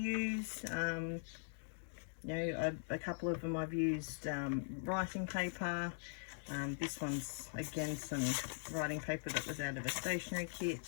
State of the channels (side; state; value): right; silent; digital silence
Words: you know, a couple of them I've used writing paper. This one's again some writing paper that was out of a stationery kit,